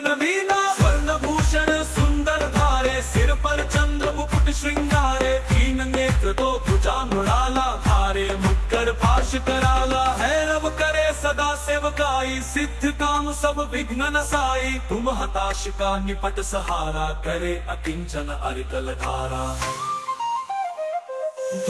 नवीना। स्वर्ण भूषण सुंदर धारे सिर पर चंद्र मुकुट श्रृंगारे। तीन नेत्र तो भुजा मृणाला धारे मुक्कर पाश कराला। हैरव करे सदा सेवकाई सिद्ध काम सब विघ्न नसाई। तुम हताश का निपट सहारा करे अकिंचन अरिकल धारा।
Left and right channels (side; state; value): both; identical; correlation 1.00